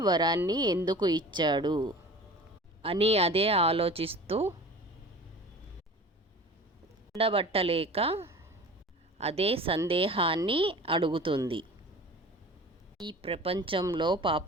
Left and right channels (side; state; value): both; normal; correlation 0.39